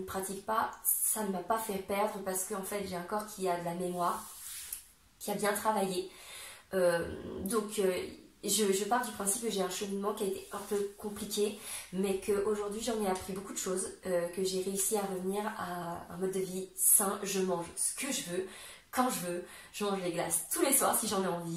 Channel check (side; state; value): both; identical; correlation 1.00